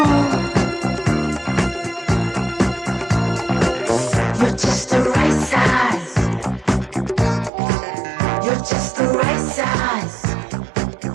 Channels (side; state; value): left; drops out; at 7.5 s